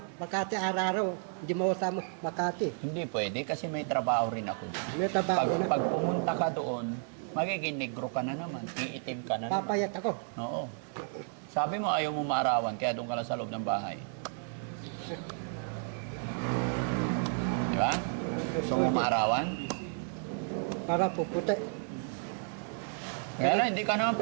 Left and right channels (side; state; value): left; silent; 55 dB below the other